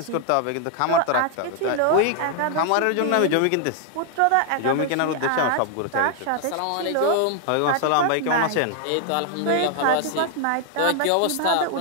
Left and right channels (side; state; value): both; different; correlation 0.00